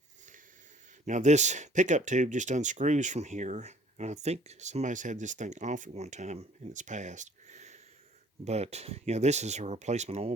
Now this pickup tube just unscrews from here, and I think somebody's had this thing off at one time in its past. But, you know, this is a replacement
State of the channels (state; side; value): normal; both; correlation 0.56